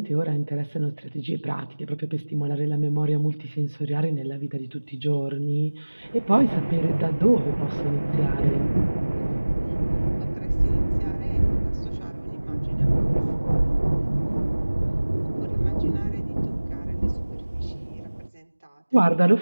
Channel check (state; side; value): inverted; both; correlation -1.00